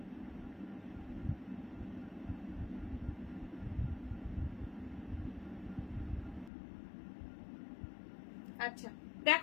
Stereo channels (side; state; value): right; drops out; at 6.5 s